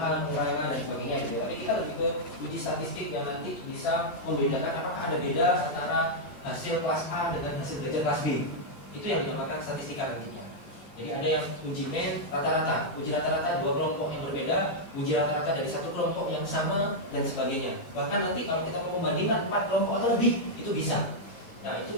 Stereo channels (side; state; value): right; late; 13 ms